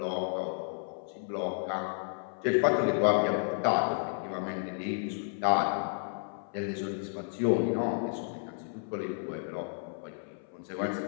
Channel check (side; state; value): right; silent; 56 dB below the other